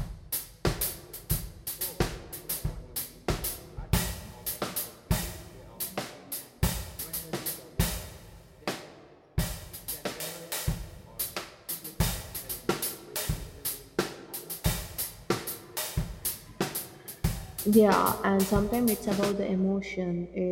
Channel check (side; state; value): both; identical; correlation 1.00